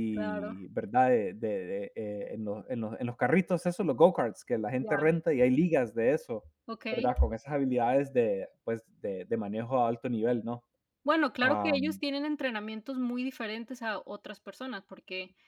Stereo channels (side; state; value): both; identical; correlation 1.00